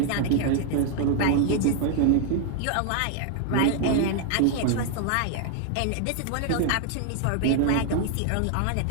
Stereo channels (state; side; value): different; both; correlation 0.00